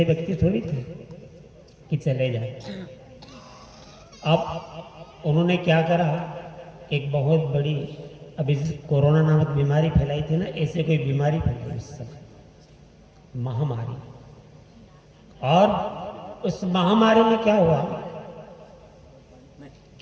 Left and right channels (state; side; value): identical; both; correlation 1.00